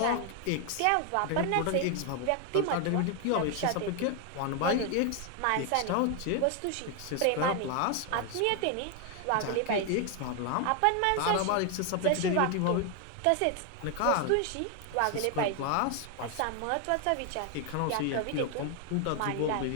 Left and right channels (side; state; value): both; different; correlation 0.01